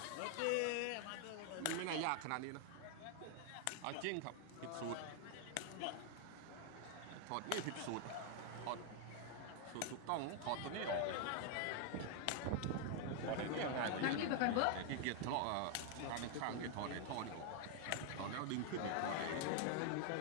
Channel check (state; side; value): different; both; correlation 0.00